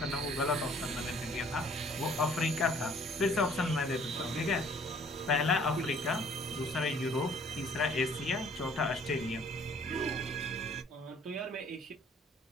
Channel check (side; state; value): both; normal; correlation 0.57